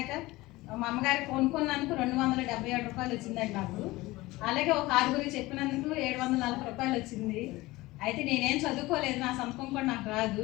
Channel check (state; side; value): quieter; right; 19.7 dB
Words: మా అమ్మగారికి కొనుక్కున్నందుకు 277 రూపాయలు వచ్చిందండి నాకు. అలాగే ఒక 6 చెప్పినందుకు 740 రూపాయలు వచ్చింది. అయితే నేనేం చదువుకోలేదు, నా సంతకం కూడా నాకు